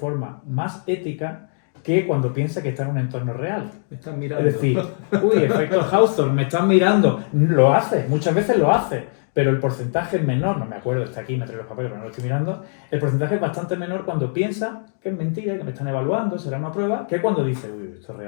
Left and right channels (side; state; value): right; silent; digital silence